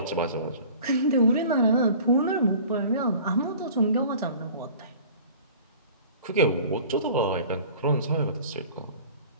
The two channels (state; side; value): inverted; both; correlation -0.45